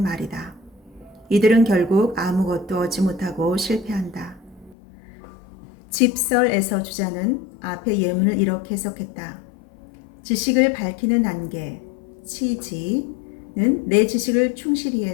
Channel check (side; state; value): right; drops out; at 4.8 s